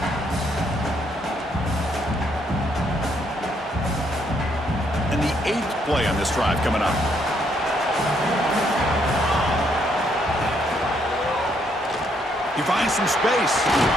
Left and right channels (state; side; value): normal; both; correlation 0.72